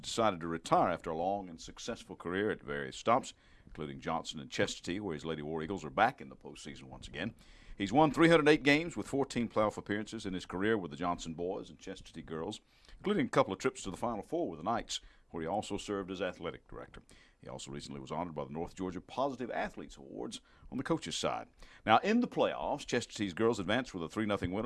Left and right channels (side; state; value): both; identical; correlation 1.00